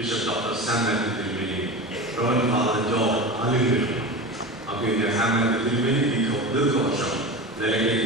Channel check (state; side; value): normal; both; correlation 0.27